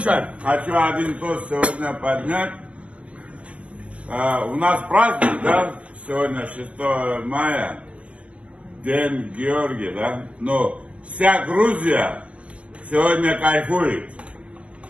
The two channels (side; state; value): left; late; 0.062 ms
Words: хочу один тост сегодня поднять. У нас праздник, да? Сегодня 6 мая, День Георгия, да? Но вся Грузия сегодня кайфует.